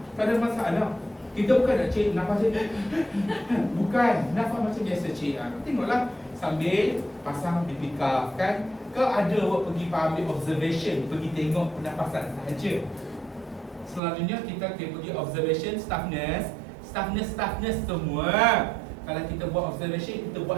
Tak ada masalah. Kita bukan nak cik nafas cik. Bukan, nafas macam biasa cik. Tengoklah sambil pasang BP cuff kan. Ke ada awak pergi ambil observation, pergi tengok pernafasan sahaja. Selalunya kita pergi observation staff nurse semua. Kalau kita buat observation, kita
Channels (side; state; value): left; drops out; at 14.0 s